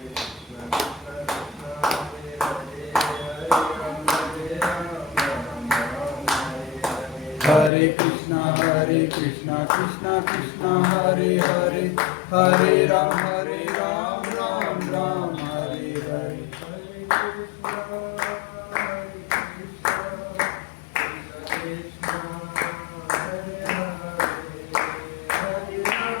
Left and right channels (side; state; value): right; drops out; at 7.7 s